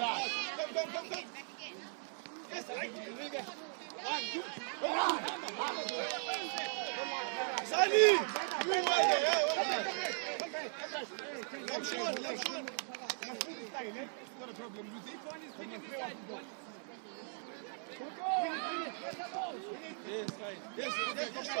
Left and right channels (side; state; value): left; silent; 52 dB below the other